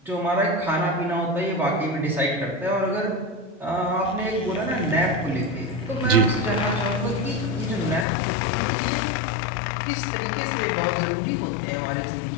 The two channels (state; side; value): drops out; right; at 8.1 s